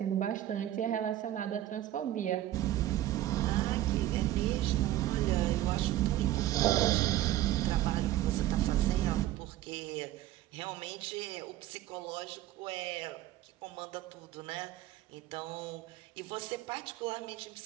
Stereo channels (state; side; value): quieter; left; 14.1 dB